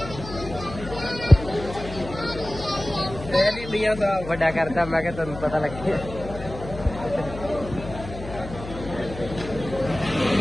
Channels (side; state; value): left; noise; hum, 11 dB below the sound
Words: ਇੰਡੀਆ ਦਾ ਵੱਡਾ ਕਰਦਾ ਮੈਂ ਕਿਹਾ ਤੁਹਾਨੂੰ ਪਤਾ ਲੱਗੇ